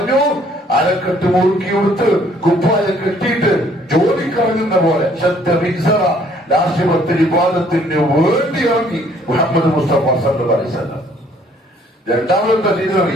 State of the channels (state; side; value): normal; both; correlation 0.61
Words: അരക്കെട്ട് മുറുക്കി കൊടുത്ത് കുപ്പായ കെട്ടിയിട്ട് ജോലിക്കിറങ്ങുന്ന പോലെ രാഷ്ട്രീയത്തിന് വിവാദത്തിന് വേണ്ടി ഇറങ്ങി മുഹമ്മദ് മുസ്തഫ സല്ലല്ലാഹു അലൈഹി വസല്ലം. രണ്ടാമതെന്താ